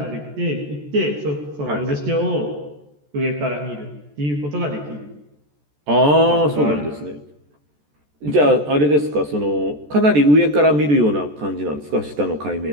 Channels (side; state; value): left; late; 14 ms